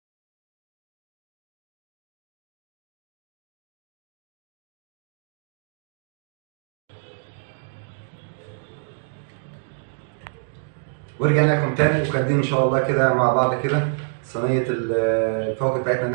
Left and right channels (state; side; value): silent; left; digital silence